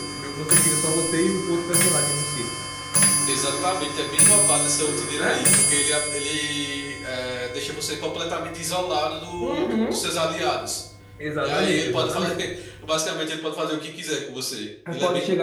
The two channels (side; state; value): both; identical; correlation 1.00